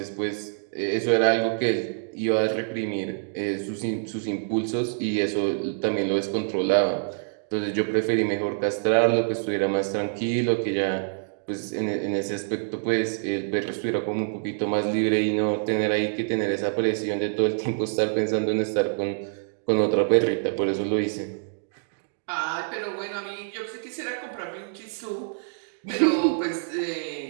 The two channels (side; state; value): left; silent; digital silence